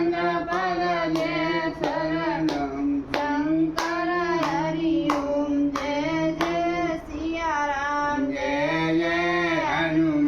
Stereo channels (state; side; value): identical; both; correlation 1.00